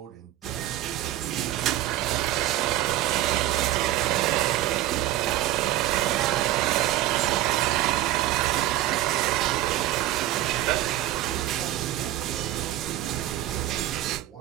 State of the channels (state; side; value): quieter; left; 14.5 dB